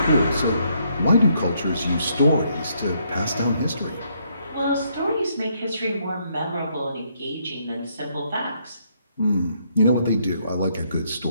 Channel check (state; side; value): inverted; both; correlation -0.72